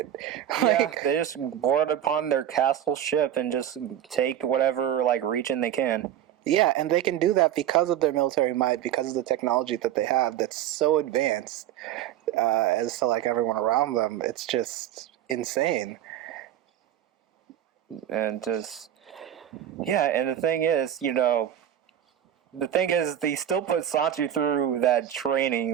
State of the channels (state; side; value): quieter; left; 10.9 dB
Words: Yeah, they just board upon their castle ship and just take whatever, region they can. Yeah, and they can do that because of their military might, because of the technology that they have that's so advanced as to, everyone around them. It's just insane. And just... Yeah, and the thing is, they still put Sanji through that